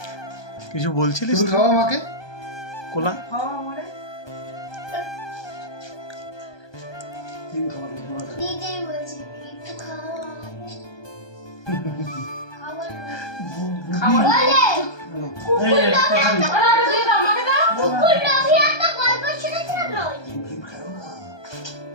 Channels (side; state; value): right; late; 1.2 ms